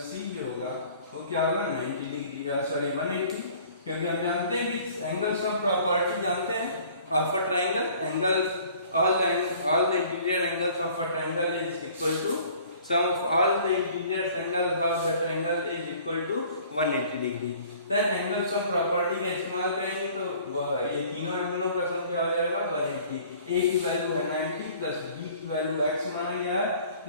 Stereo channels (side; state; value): both; inverted; correlation -0.52